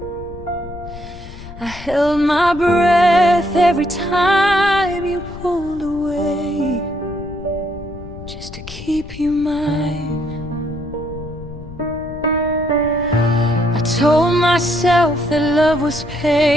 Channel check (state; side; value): noise; left; rumble, 14 dB below the sound